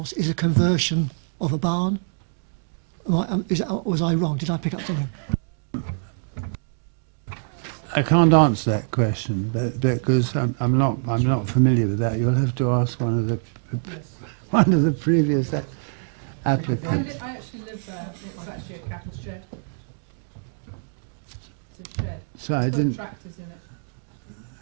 is a conversion of a barn? Was I wrong? Did I pick up something? I can't answer that question, because I'm not familiar with that. You'll have to ask one of the previous applicants. I actually live there. It's actually a cattle shed. It's a shed. So I It's got didn't. tractors in it.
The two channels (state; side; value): silent; left; digital silence